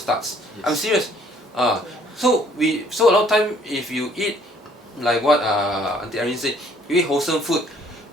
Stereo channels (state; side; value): normal; both; correlation 0.60